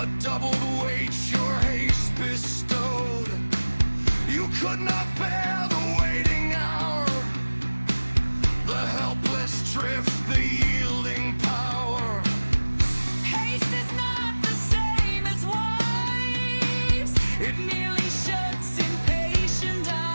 doubled weight your haste bestowed. You could not bear the waiting hour, the helpless drift, the yielding power. Haste is not the same as wives. It merely shuts impatient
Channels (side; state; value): both; inverted; correlation -1.00